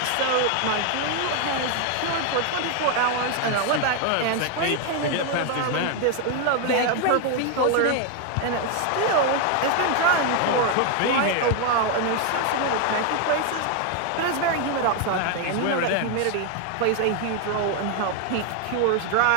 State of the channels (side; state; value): both; different; correlation 0.01